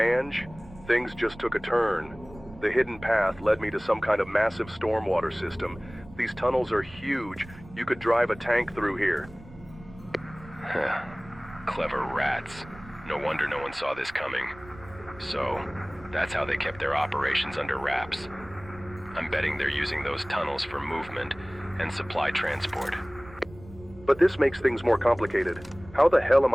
things just took a turn. The hidden path led me to some kind of massive stormwater system. These tunnels are huge. You could drive a tank through here. Clever rats. No wonder no one saw this coming. So, that's how they kept their operations under wraps. I'm betting they're using those tunnels for movement and supply transport. But this makes things more complicated. How the hell am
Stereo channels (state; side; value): noise; right; rumble, 19 dB below the sound